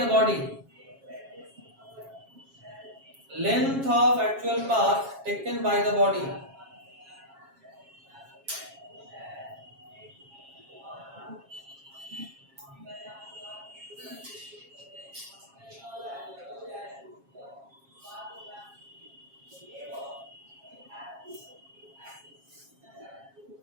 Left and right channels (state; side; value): late; left; 7.3 ms